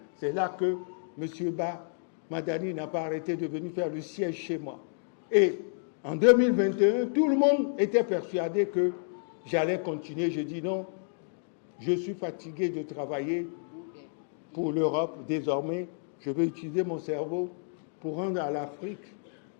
C'est là que M. Madani n'a pas arrêté de venir faire le siège chez moi. Et en 2021, tout le monde était persuadé que j'allais continuer. Je dis non, je suis fatigué de travailler pour l'Europe. Désormais, je vais utiliser mon cerveau pour rendre à l'Afrique,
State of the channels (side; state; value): right; silent; digital silence